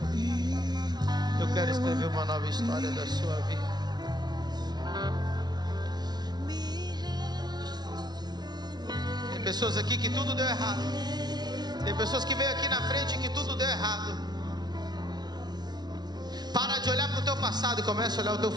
Eu quero escrever uma nova história da sua vida. Tem pessoas aqui que tudo deu errado. Tem pessoas que veio aqui na frente que tudo deu errado. Para de olhar para o teu passado e começa a olhar o teu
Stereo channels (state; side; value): late; left; 0.20 ms